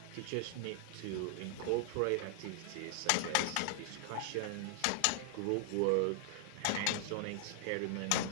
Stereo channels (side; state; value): both; different; correlation 0.00